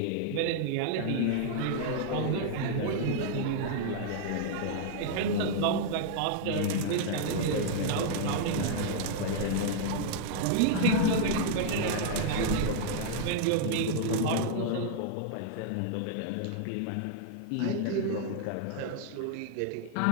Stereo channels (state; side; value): different; both; correlation -0.01